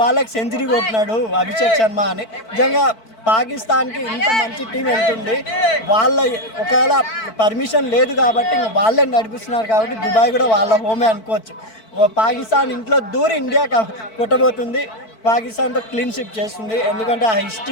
బాళ్ళకి సెంచరీ కొట్టినాడు అభిషేక్ శర్మ అని. నిజంగా పాకిస్తాన్కి ఇంత మంచి టీం వెళ్తుంది. వాళ్ళ ఒకవేళ పర్మిషన్ లేదు కాబట్టి వాళ్ళే నడిపిస్తున్నారు కాబట్టి దుబాయ్ కూడా వాళ్ళ హోమే అనుకోవచ్చు. పాకిస్తాన్ ఇంట్లో దూరి ఇండియా కొట్టబోతుంది. పాకిస్తాన్తో క్లీన్ షిప్ చేస్తుంది. ఎందుకంటే ఆ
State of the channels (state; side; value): late; right; 4.5 ms